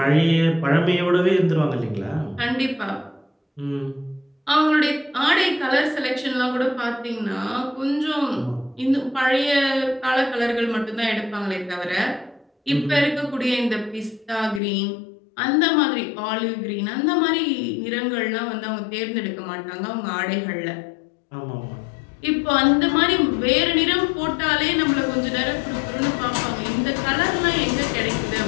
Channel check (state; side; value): drops out; right; at 14.6 s